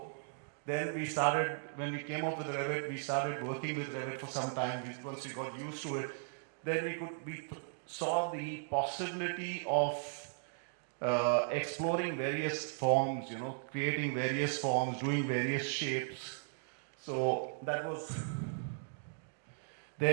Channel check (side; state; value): left; silent; digital silence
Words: then we started, when we came up with Revit, we started working with Revit for some time. Once we got used to it, then we saw the possibility of exploring various forms, creating various forms, doing various shapes. So that was